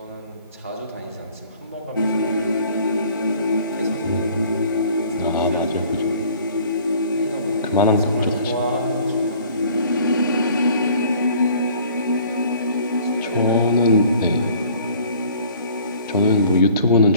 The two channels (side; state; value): both; inverted; correlation -0.53